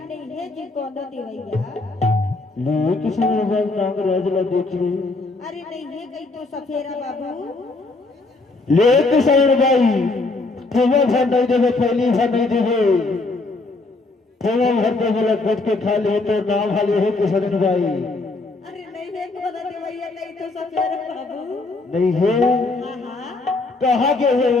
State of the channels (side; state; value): right; quieter; 3.3 dB